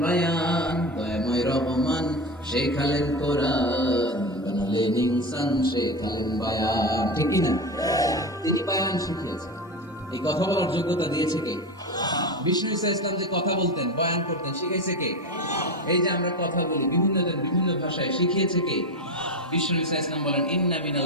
বায়ান। দয়াময় রহমান শেখালেন কোরআন, বানালেন ইনসান, শেখালেন বায়ান। ঠিক কি না? তিনি বায়ান শিখিয়েছেন। এই কথা বলার যোগ্যতা দিয়েছে কে? বিষ্ণু ঈসা ইসলাম যে কথা বলতেন, বয়ান করতেন, শিখাইছে কে? এই যে আমরা কথা বলি বিভিন্ন জন বিভিন্ন ভাষায়, শিখিয়েছে কে? বিষ্ণু ঈসা ইসলাম বলেন ইন্না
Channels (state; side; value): normal; both; correlation 0.21